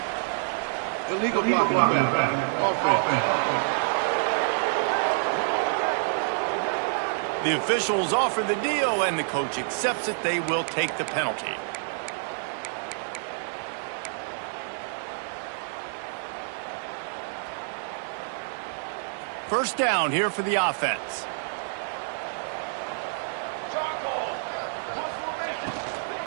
Illegal blocking. Offense. The officials offer the deal, and the coach accepts it. They will take the penalty. First down here for the offense.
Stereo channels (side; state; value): left; silent; 60 dB below the other